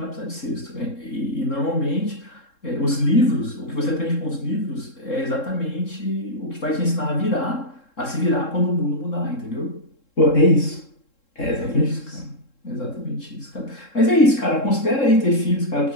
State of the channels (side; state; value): right; late; 3.7 ms